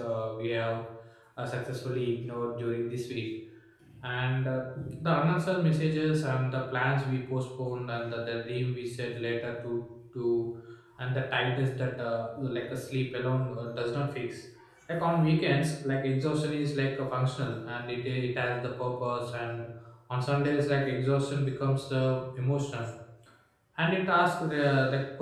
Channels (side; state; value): both; identical; correlation 1.00